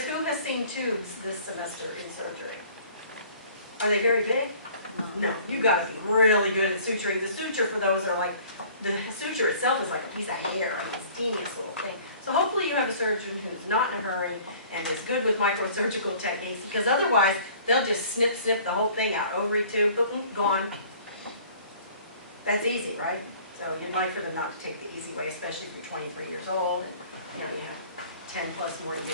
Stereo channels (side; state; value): both; inverted; correlation -0.51